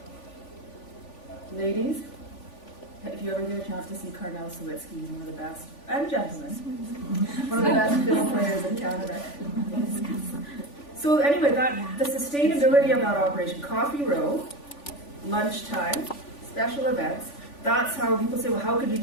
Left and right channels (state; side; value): late; right; 3.5 ms